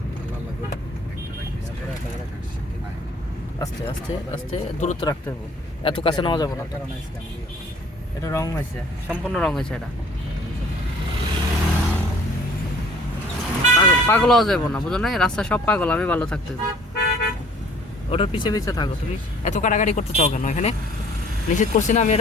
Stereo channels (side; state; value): both; normal; correlation 0.54